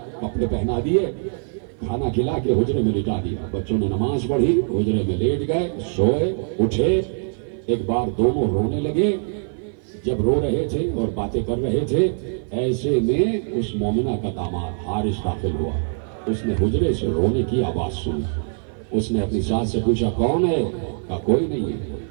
کپڑے پہنا دیے، کھانا کھلا کے حجرے میں لٹا دیا۔ بچوں نے نماز پڑھی، حجرے میں لیٹ گئے، سوئے، اٹھے، ایک بار دونوں رونے لگے۔ جب رو رہے تھے اور باتیں کر رہے تھے، ایسے میں اس مومنہ کا داماد حارث داخل ہوا، اس نے حجرے سے رونے کی آواز سنی، اس نے اپنی ساس سے پوچھا کون ہے؟ کہا کوئی نہیں ہے،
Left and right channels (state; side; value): silent; left; 55 dB below the other